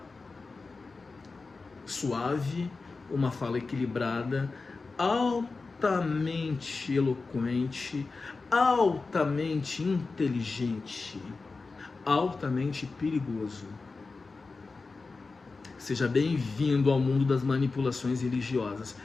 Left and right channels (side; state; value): right; quieter; 4.0 dB